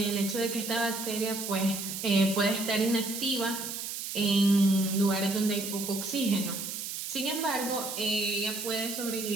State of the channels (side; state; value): right; noise; hiss, 6 dB below the sound